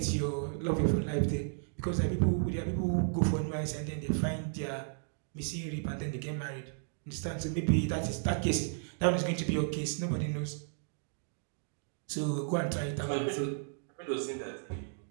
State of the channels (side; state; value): left; silent; digital silence